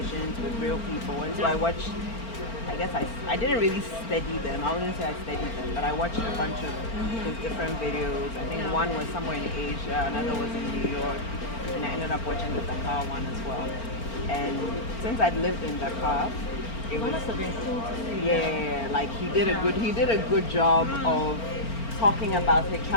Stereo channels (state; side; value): late; right; 4.4 ms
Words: with real people." And so I watched. I guess I didn't really study them. I wouldn't say I studied them, but I watched a bunch of his different videos. I think one was somewhere in Asia, another was in New York, and I ended up watching the Dakar one as well. And since I'd lived in Dakar, it must have been cool to see. Yeah, like he did a good job of talking about it,